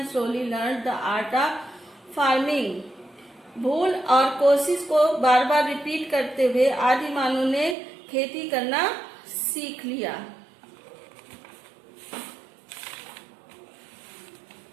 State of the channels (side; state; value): left; drops out; at 7.8 s